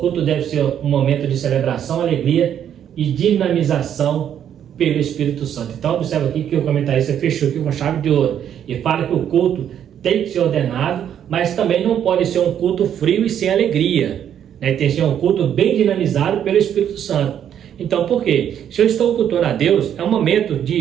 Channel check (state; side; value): quieter; left; 9.5 dB